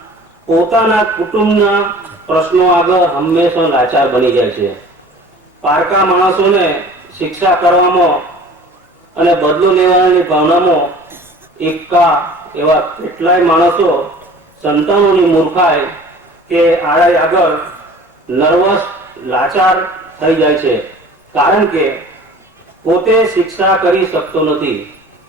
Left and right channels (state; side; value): normal; both; correlation 0.45